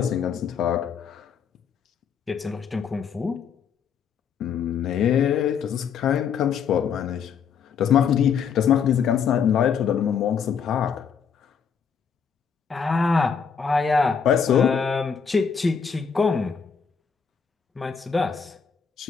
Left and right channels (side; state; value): right; quieter; 6.7 dB